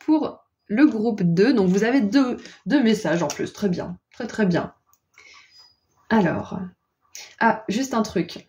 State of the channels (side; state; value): both; identical; correlation 1.00